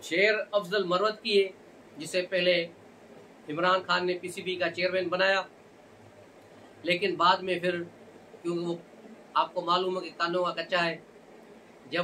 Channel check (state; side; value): identical; both; correlation 1.00